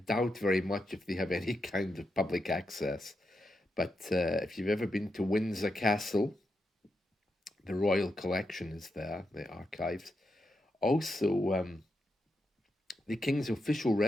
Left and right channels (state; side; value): normal; both; correlation 0.85